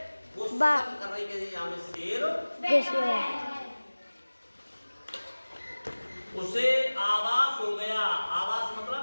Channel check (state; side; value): inverted; both; correlation -1.00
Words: वो शक कर रही है यहाँ में शेर। उसे आवाज हो गया। आवाज मतलब